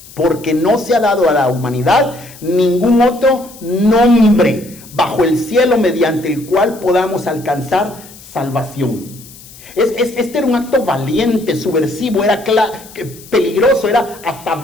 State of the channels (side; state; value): left; noise; hiss, 20 dB below the sound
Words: porque no se ha dado a la humanidad ningún otro nombre bajo el cielo mediante el cual podamos alcanzar salvación. Este era un acto valiente, subversivo, era peligroso, era hasta